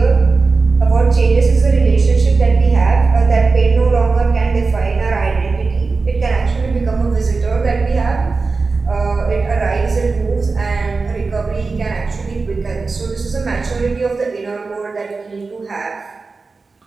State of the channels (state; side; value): quieter; left; 4.1 dB